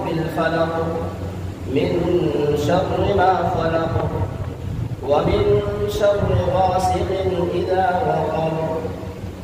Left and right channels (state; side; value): identical; both; correlation 1.00